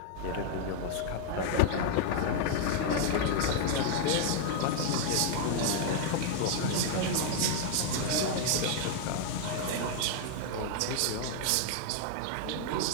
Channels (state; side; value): different; both; correlation 0.00